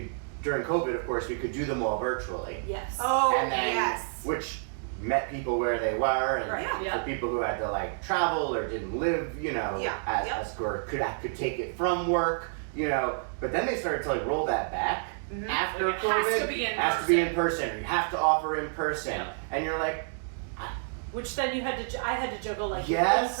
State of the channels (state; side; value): silent; left; digital silence